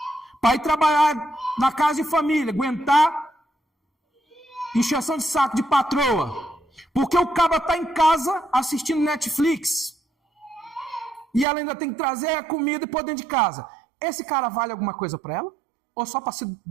para ir trabalhar na casa de família, aguentar encheção de saco de patroa, porque o cabra está em casa assistindo Netflix, e ela ainda tem que trazer a comida e pôr dentro de casa. Esse cara vale alguma coisa para ela? Ou só para se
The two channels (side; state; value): left; drops out; at 11.5 s